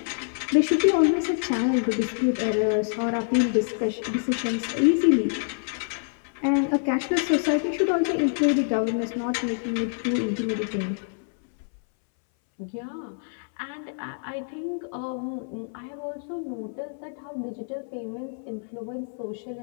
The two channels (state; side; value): silent; right; 61 dB below the other